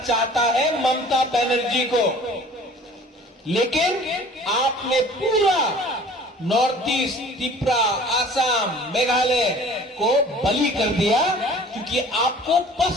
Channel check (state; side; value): normal; both; correlation 0.48